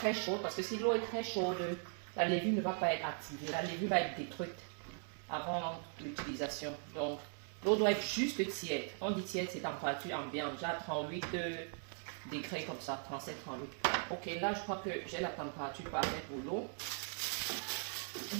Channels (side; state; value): left; silent; 51 dB below the other